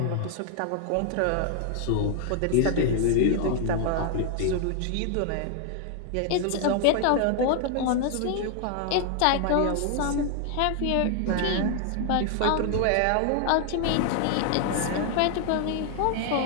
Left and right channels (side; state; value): both; different; correlation 0.00